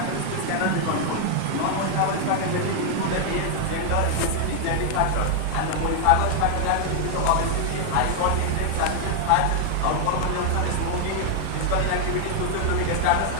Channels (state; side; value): different; both; correlation 0.00